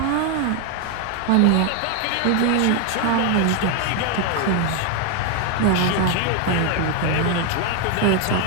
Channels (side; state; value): both; different; correlation 0.01